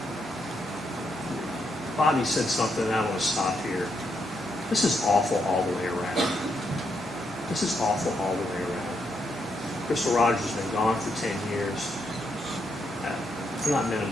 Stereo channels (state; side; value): normal; both; correlation 0.79